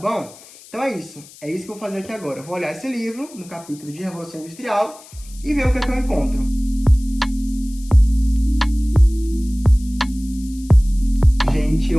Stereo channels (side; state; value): left; noise; hiss, 21 dB below the sound